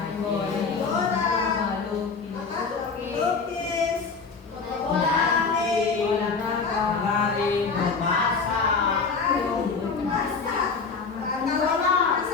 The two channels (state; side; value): quieter; right; 4.9 dB